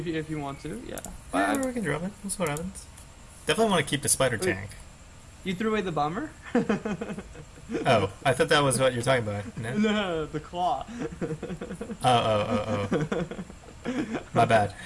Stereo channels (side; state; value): both; identical; correlation 1.00